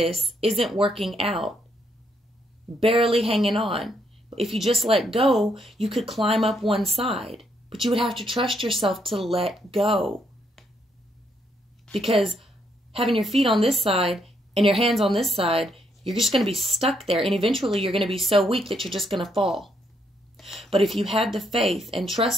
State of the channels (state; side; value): normal; both; correlation 0.75